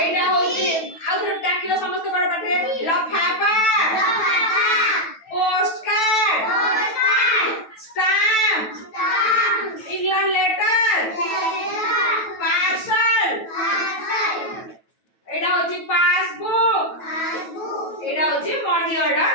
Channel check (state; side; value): late; right; 9.2 ms